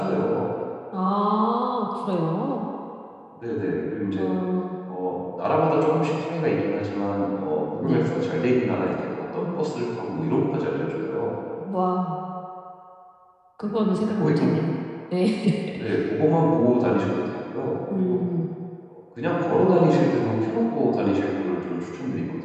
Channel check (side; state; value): both; identical; correlation 1.00